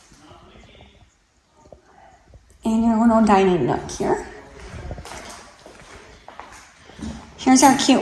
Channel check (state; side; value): identical; both; correlation 1.00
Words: And your little dining nook here. Here's our